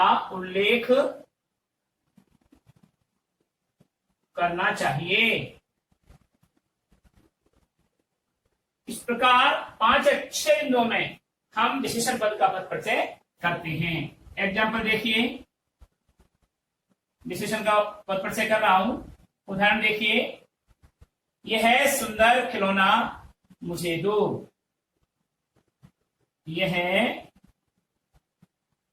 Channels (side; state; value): both; identical; correlation 1.00